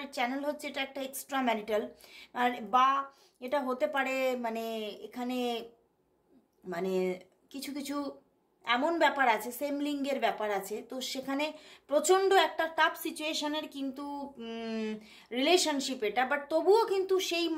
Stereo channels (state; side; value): identical; both; correlation 1.00